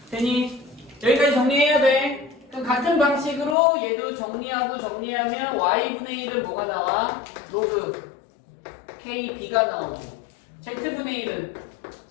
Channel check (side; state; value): right; drops out; at 3.6 s